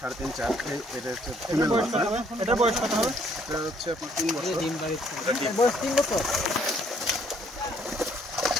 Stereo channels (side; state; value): both; normal; correlation 0.65